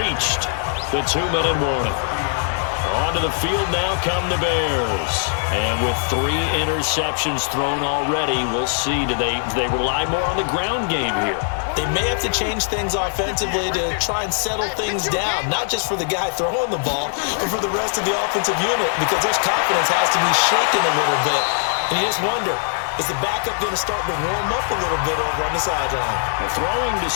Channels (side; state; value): right; silent; digital silence